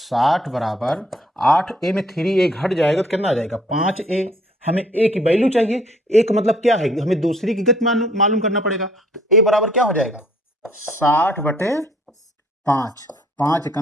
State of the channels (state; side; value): normal; both; correlation 0.61